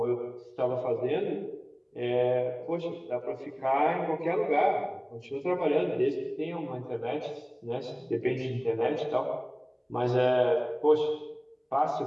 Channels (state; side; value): identical; both; correlation 1.00